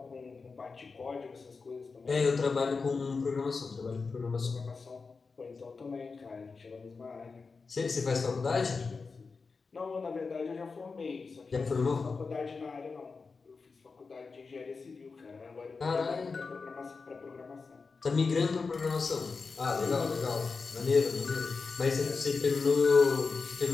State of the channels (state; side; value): quieter; right; 4.6 dB